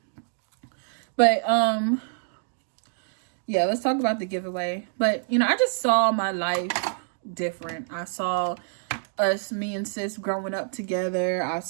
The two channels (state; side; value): silent; left; digital silence